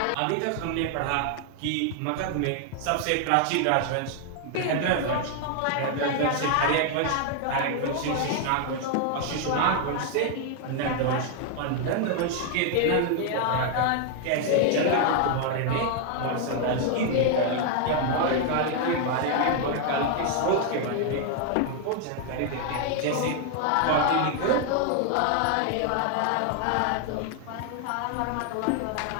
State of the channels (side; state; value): both; different; correlation 0.00